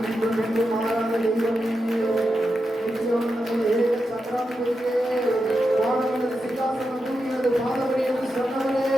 மீண்டும் மீண்டும் மாறாத தெய்வமே, நிச்சயம் நம்முடைய சக்கராதிபதியே, வானமண்டல சிங்காசனம் பூமியது பாதவரே என்று சொன்னவரே,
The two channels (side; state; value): both; normal; correlation 0.88